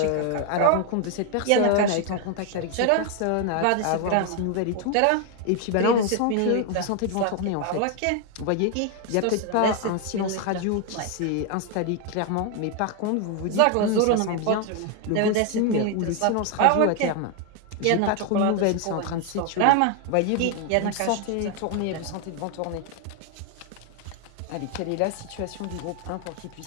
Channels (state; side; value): different; both; correlation 0.01